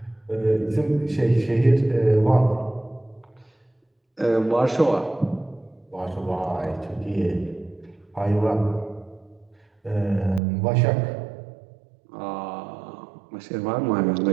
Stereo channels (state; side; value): drops out; left; at 10.4 s